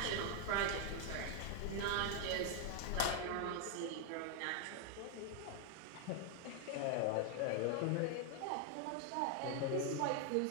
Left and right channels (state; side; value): different; both; correlation 0.00